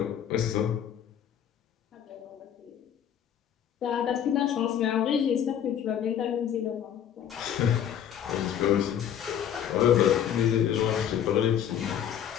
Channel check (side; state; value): right; quieter; 9.4 dB